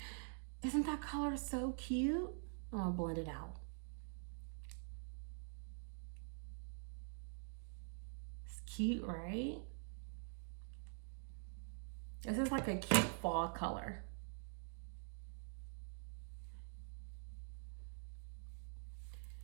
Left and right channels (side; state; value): left; silent; digital silence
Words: Isn't that color so cute? I'm gonna blend it out. Cute, right? This is like a cute fall color.